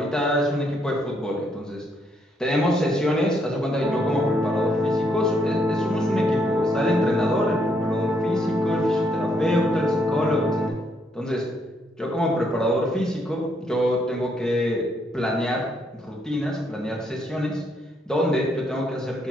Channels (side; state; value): both; normal; correlation 0.74